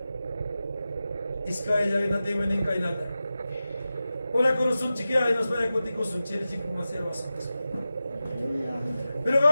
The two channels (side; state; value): both; inverted; correlation -0.94